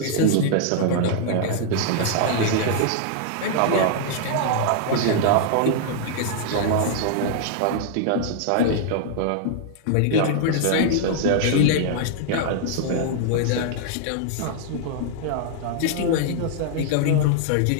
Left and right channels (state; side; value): different; both; correlation -0.01